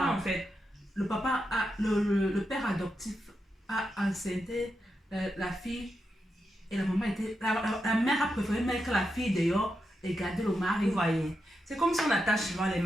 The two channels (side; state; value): both; normal; correlation 0.87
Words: en fait. Le papa le père adoptif a enceinté la fille et la maman était la mère a préféré mettre la fille dehors et garder le mari. Vous voyez, c'est comme si on attache souvent les